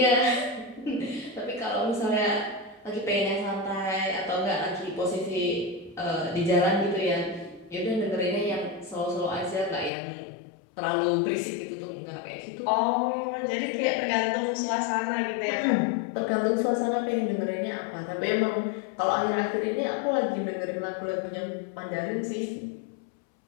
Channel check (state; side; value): drops out; right; at 9.9 s